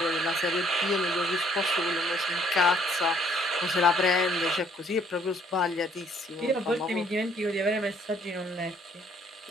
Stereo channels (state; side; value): normal; both; correlation 0.64